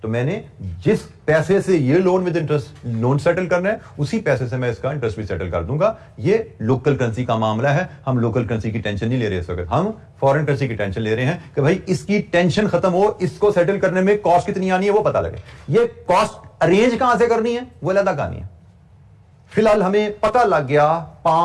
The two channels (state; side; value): identical; both; correlation 1.00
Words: तो मैंने जिस पैसे से ये loan with interest loan settle करना है, उसी पैसे से मैं इसका इंटरेस्ट भी सेटल कर दूंगा। ये लोकल करेंसी का मामला है, हम लोकल करेंसी की टेंशन नहीं ले रहे इस वक्त, हम फॉरेन करेंसी की टेंशन ले रहे हैं कि भाई इसकी टेंशन खत्म हो, इसको सेटल करने में कॉस्ट कितनी आनी है वो पता लगे। ये कॉस्ट अरेंज कहां से करनी है वो अलग कहानी है। फिलहाल हमें पता लग गया